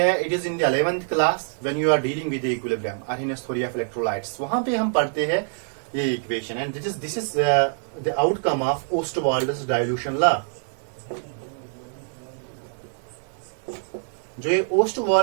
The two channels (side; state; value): left; silent; digital silence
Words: it is in the 11th class when you are dealing with equilibrium और इन थ्योरी ऑफ इलेक्ट्रोलाइट्स, वहां पे हम पढ़ते हैं ये equation, and this is the outcome of Ostwald's dilution law. जो ये